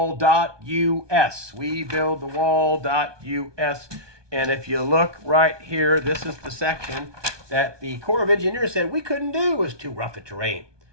WeBuildTheWall.us. And if you look right here, this is the section that the Corps of Engineers said we couldn't do. It was too rough a terrain.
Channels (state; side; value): late; left; 1.2 ms